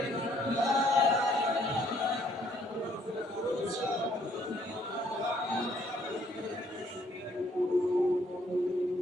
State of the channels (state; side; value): normal; both; correlation 0.65